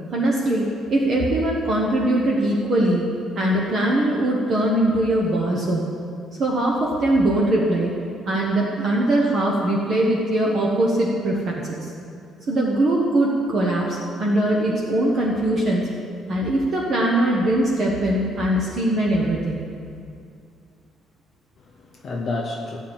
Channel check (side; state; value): both; normal; correlation 0.70